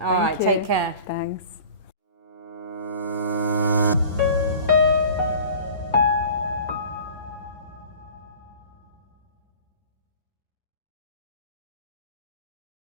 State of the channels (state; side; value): inverted; both; correlation -0.43